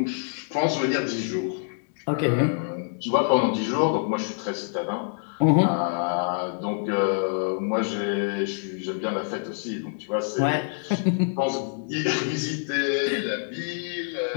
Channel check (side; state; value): right; silent; digital silence